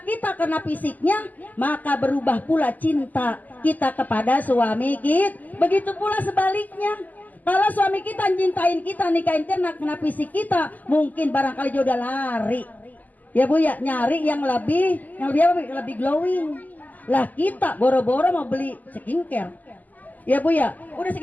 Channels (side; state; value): right; late; 0.081 ms